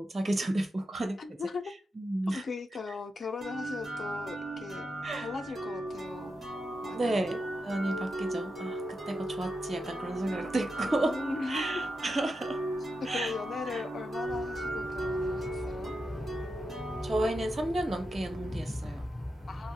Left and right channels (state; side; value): normal; both; correlation 0.87